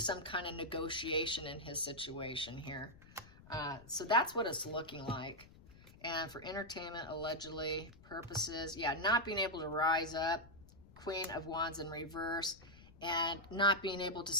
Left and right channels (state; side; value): noise; left; rumble, 21 dB below the sound